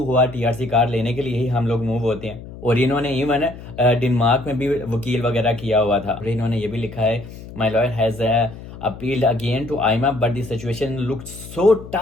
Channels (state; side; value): noise; left; hum, 14 dB below the sound